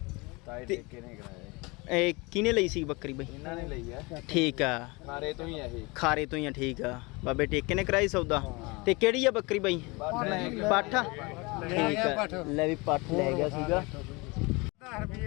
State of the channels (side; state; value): right; quieter; 26.1 dB